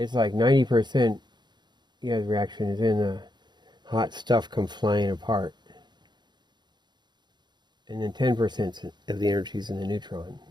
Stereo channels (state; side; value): late; left; 0.21 ms